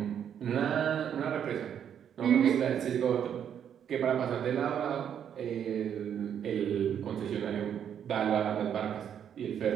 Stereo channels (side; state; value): left; quieter; 8.9 dB